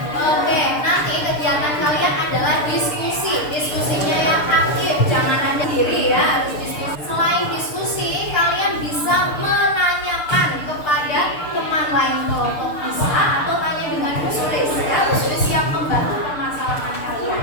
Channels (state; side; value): late; right; 6.7 ms